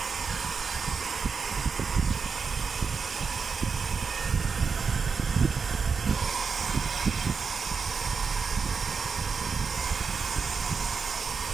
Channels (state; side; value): quieter; left; 5.4 dB